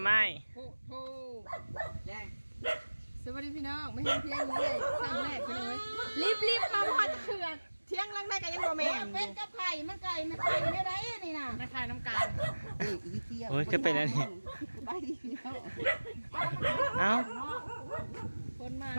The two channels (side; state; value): both; inverted; correlation -1.00